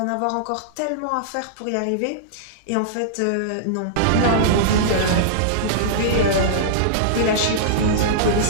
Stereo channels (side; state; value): both; different; correlation -0.02